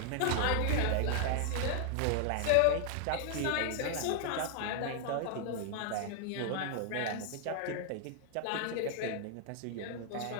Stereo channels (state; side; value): different; both; correlation 0.00